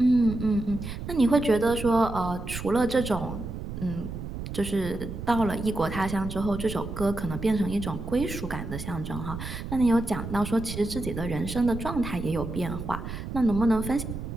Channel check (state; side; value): noise; right; rumble, 8 dB below the sound